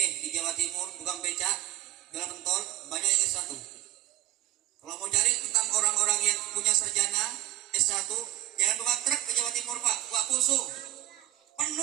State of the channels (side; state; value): left; quieter; 15.3 dB